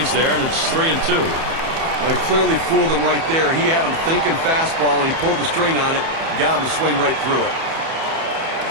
there, and it's 3-2. Well, he clearly fooled him right there. He had him thinking fastball, and he pulled the string on it, got him to swing right through it.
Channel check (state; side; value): late; left; 31 ms